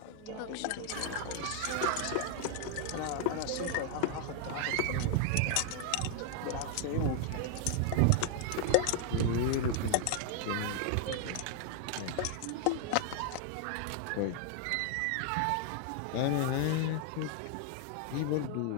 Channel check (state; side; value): different; both; correlation 0.00